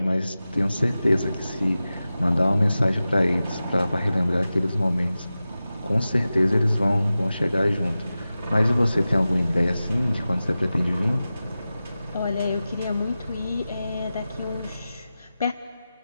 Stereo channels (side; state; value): both; inverted; correlation -0.95